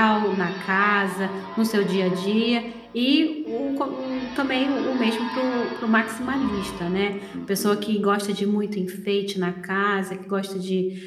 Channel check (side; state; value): both; identical; correlation 1.00